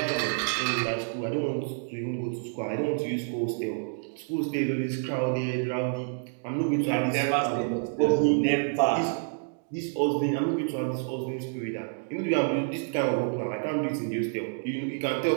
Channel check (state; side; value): silent; left; digital silence